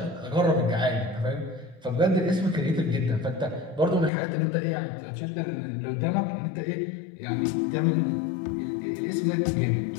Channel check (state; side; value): drops out; right; at 4.1 s